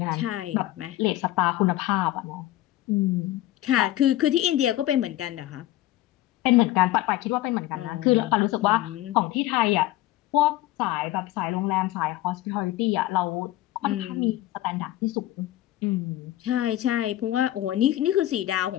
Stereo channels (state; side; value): quieter; right; 15.2 dB